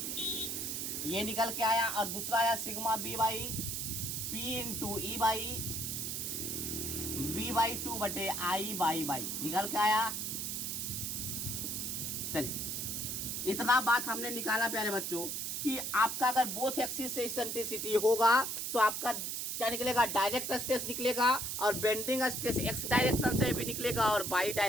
ये निकल के आया। और दूसरा आया sigma B Y P into E Y B Y 2 बटे आई बाई बाई, निकल के आया। चलिए इतना बात हमने निकाला प्यारे बच्चों कि आपका अगर बोथ एक्सिस से इसेंट्रिसिटी होगा तो आपका क्या निकलेगा, डायरेक्ट स्ट्रेस निकलेगा, और बेंडिंग स्ट्रेस एक्स डायरेक्शन से भी निकलेगा और वाई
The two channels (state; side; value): noise; right; hiss, 3 dB below the sound